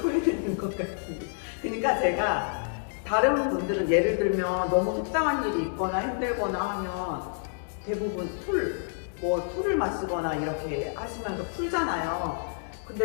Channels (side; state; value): right; silent; digital silence